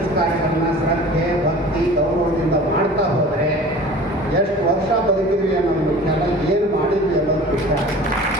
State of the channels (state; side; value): normal; both; correlation 0.42